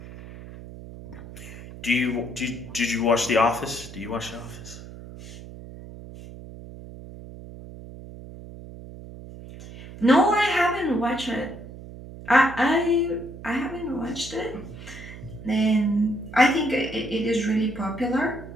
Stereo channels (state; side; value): noise; right; hum, 14 dB below the sound